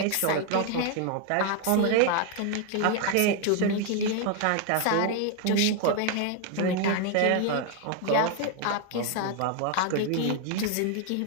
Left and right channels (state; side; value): different; both; correlation 0.01